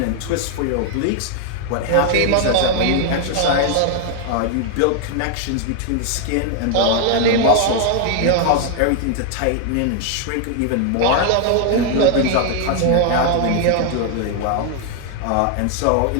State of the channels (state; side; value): different; both; correlation 0.00